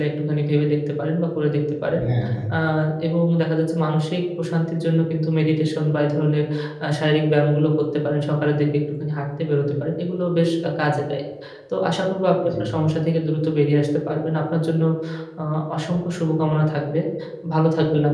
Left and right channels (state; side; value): identical; both; correlation 1.00